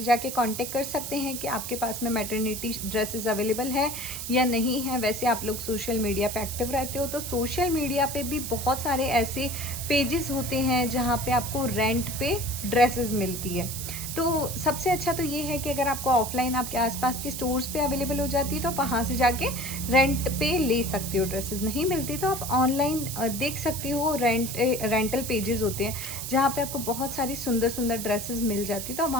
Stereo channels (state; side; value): noise; right; hiss, 6 dB below the sound